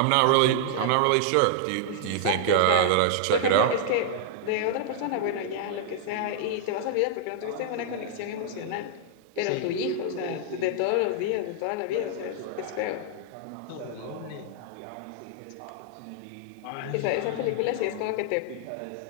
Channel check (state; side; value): different; both; correlation -0.01